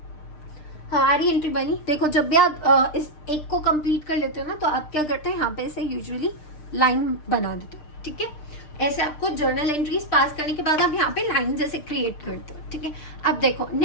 हमारी एंट्री बनी। देखो जब भी आप इस एक को कंप्लीट कर लेते हो ना, तो आप क्या करते हैं, यहाँ पे इसे यूजुअली लाइन बना देते हो। ठीक है, ऐसे आपको जर्नल एंट्रीज पास करने के बाद आप यहाँ पे लाइन जैसे क्रिएट करते हो। ठीक है, अब देखो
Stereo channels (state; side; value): late; right; 6.6 ms